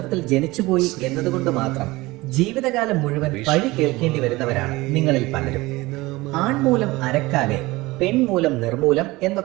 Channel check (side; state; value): left; quieter; 20.7 dB